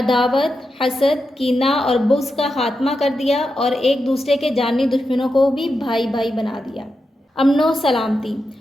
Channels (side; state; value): both; normal; correlation 0.88